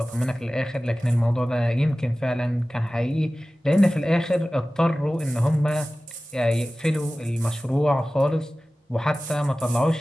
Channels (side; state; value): both; normal; correlation 0.97